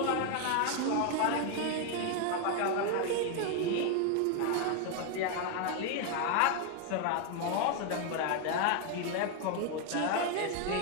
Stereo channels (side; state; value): both; different; correlation 0.00